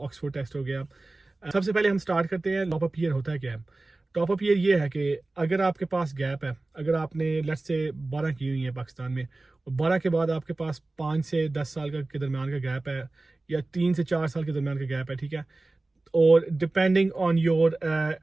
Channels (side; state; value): left; quieter; 3.1 dB